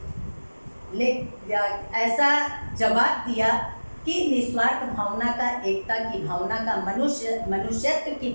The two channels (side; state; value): both; inverted; correlation -1.00